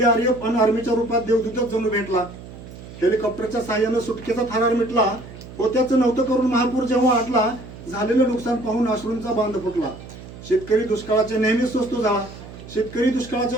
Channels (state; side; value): noise; right; hum, 15 dB below the sound